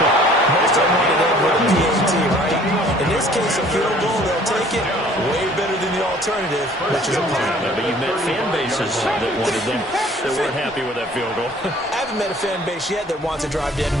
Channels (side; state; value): both; normal; correlation 0.54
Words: Most of them want to end with a PAT, right? In this case, a field goal, they'll take it. Way better than the alternative, which is a punt. Yeah, but you've met fan bases that wanted them, that weren't happy with that field goal. I haven't met a fan base yet that wants to drive to end